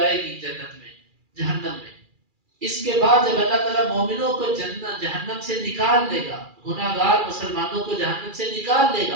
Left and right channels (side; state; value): left; late; 2.4 ms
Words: گی جنت میں, جہنم میں. اس کے بعد جب اللہ تعالیٰ مومنوں کو جہنم سے نکال دے گا, گناہگار مسلمانوں کو جہنم سے نکال دے